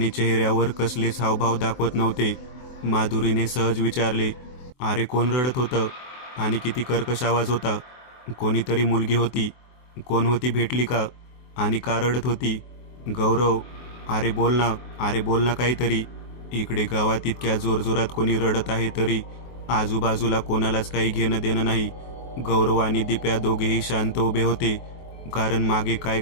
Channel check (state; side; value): late; right; 23 ms